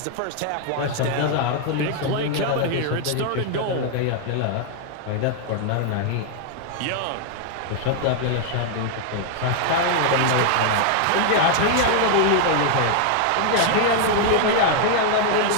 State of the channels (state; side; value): different; both; correlation 0.00